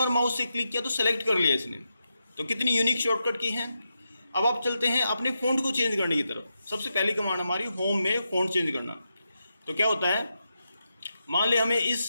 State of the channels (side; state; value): both; inverted; correlation -0.87